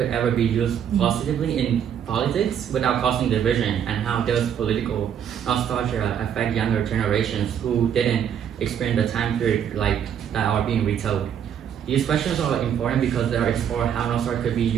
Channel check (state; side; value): quieter; left; 8.8 dB